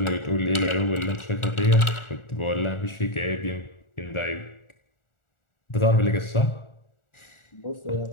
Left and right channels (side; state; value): right; late; 1.4 ms